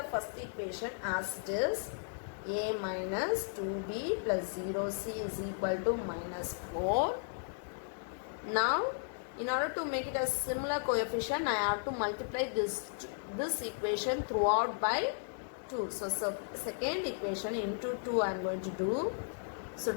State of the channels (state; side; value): silent; right; digital silence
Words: first equation as it is. A minus 2b plus 0c is equal to minus 4. Now, in order to make it a similar coefficient, I have to multiply this equation throughout by 2. So second equation into 2 I am going to do. So